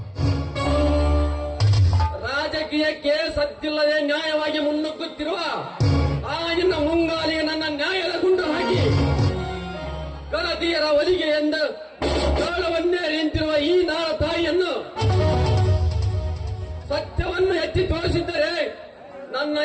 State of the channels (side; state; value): both; identical; correlation 1.00